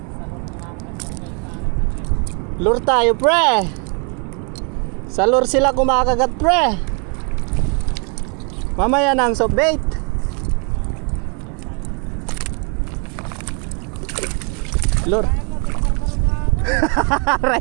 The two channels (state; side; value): quieter; left; 35.3 dB